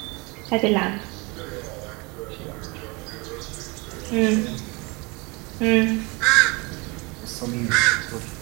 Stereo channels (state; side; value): quieter; left; 27.3 dB